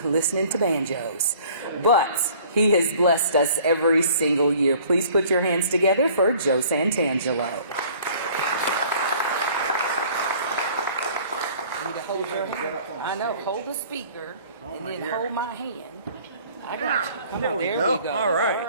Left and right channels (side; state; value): both; inverted; correlation -0.52